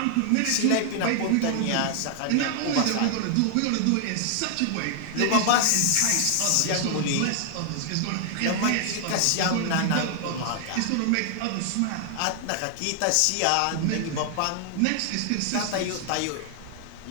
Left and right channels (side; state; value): both; different; correlation 0.00